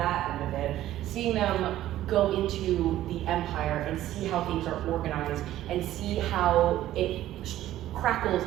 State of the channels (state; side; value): quieter; left; 13.7 dB